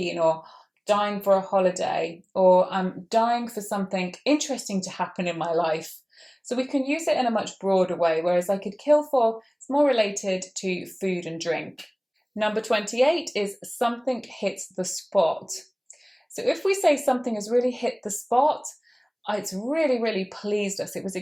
or dying for a holiday, or I'm dying for something interesting to happen in my life. So we can use it in a much broader way, whereas I could kill for is more related to food and drink. Number 28 is something hits the spot. So if we say something has really hit the spot, it's really, really pleased us. It was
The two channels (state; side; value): identical; both; correlation 1.00